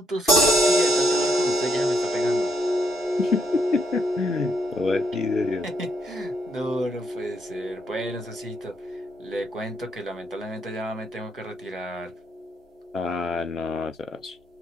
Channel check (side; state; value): both; normal; correlation 0.74